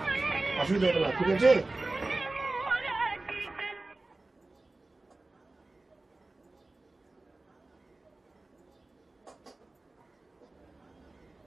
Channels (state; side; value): quieter; left; 3.1 dB